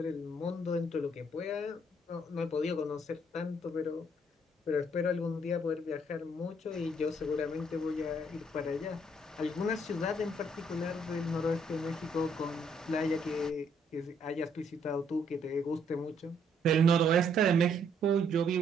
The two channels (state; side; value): normal; both; correlation 0.68